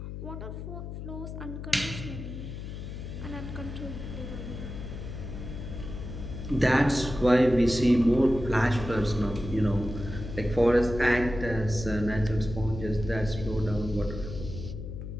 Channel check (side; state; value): left; noise; hum, 8 dB below the sound